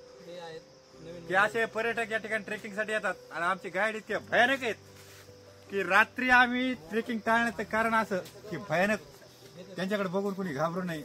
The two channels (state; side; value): identical; both; correlation 1.00